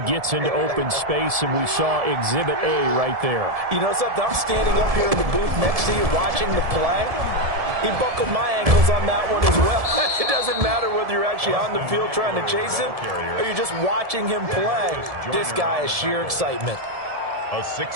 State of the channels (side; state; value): left; late; 1.7 ms